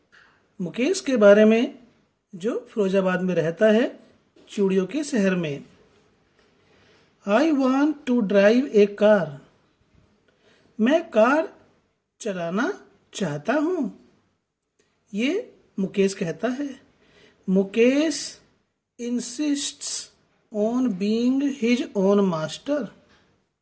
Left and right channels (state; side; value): identical; both; correlation 1.00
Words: मुकेश के बारे में, जो फिरोजाबाद में रहता है, चूड़ियों के शहर में। I want to drive a car. मैं कार चलाना चाहता हूँ, ये मुकेश कहता है। Mukesh insists on being his own master.